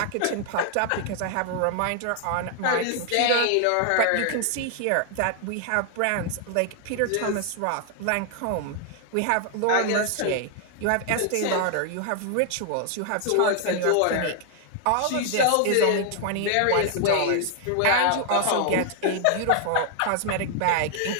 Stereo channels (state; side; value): different; both; correlation 0.00